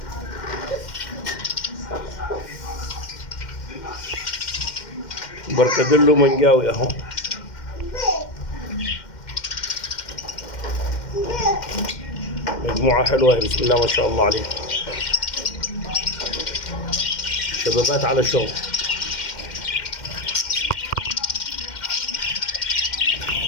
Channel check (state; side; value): late; right; 2.1 ms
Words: بركدلو منجاوي اهو. مجموعة حلوة بسم الله ما شاء الله عليها، شبابات على شغل.